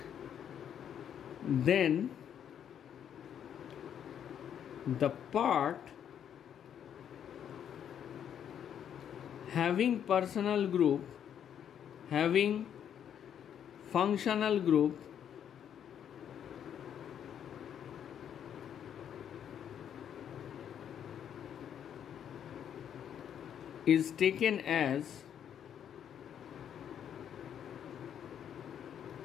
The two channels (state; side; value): quieter; right; 9.1 dB